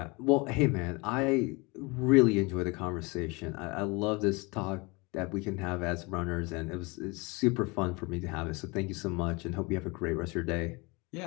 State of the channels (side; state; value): right; quieter; 27.0 dB